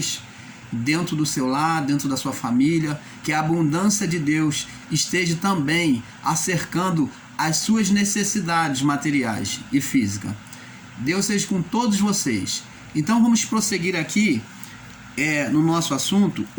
dentro do seu lar, dentro da sua família, que a abundância de Deus esteja também acercando as suas necessidades materiais e físicas. Deus seja com todos vocês. Então vamos prosseguir aqui no nosso assunto,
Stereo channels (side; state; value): both; identical; correlation 1.00